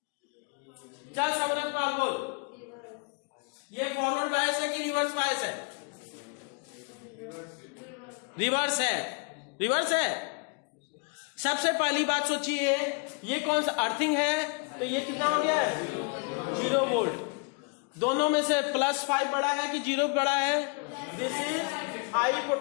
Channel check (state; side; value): quieter; right; 35.9 dB